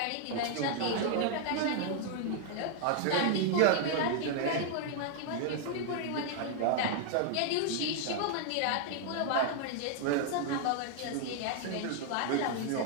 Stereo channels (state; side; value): different; both; correlation 0.00